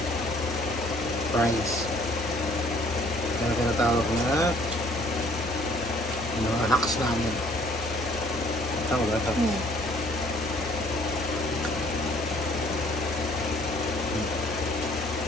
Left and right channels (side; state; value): both; normal; correlation 0.59